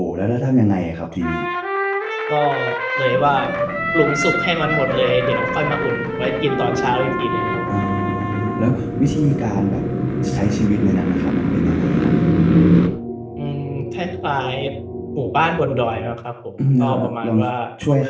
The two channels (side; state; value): both; identical; correlation 1.00